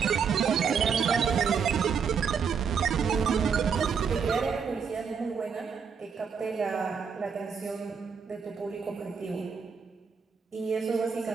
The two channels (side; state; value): left; quieter; 6.3 dB